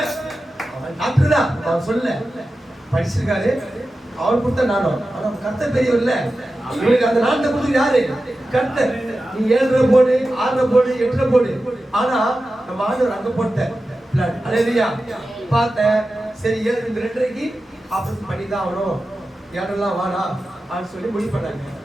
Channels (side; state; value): both; normal; correlation 0.93